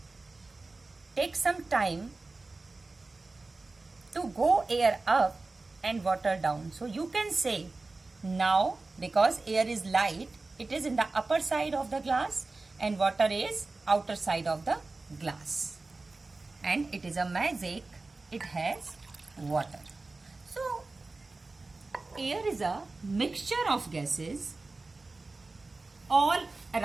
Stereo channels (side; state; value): left; quieter; 3.5 dB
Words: take some time to go air up and water down. So you can say now, because air is light, it is in the upper side of the glass and water is outer side of the glass. And it is a magic. It has water. So, air is a mixture of gases all